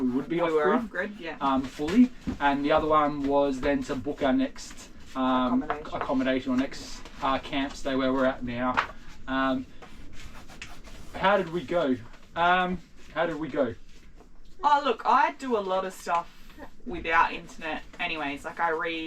we would be off-grid, yeah. Fully. And the other one was then to book our next accommodation or next camp stay where we're at now. How did we go? Oh, look, I do a lot of stuff without internet anyways. Like I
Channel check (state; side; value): identical; both; correlation 1.00